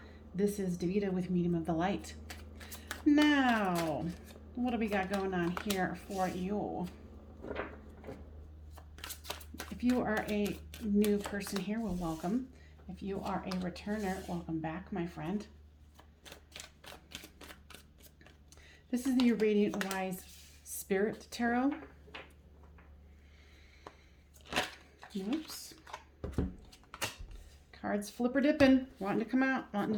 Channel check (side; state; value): both; identical; correlation 1.00